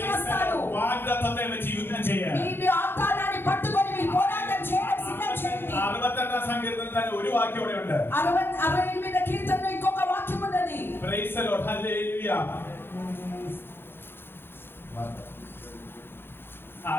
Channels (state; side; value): late; right; 0.10 ms